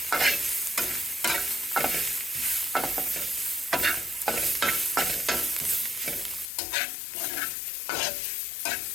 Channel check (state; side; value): drops out; right; at 6.5 s